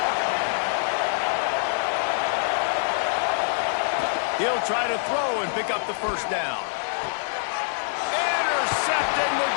He'll try to throw and pick up the first down. Intercepted. The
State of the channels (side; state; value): right; silent; 59 dB below the other